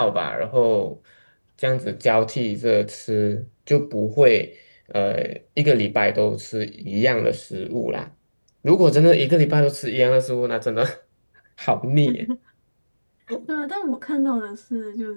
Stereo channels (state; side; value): inverted; both; correlation -1.00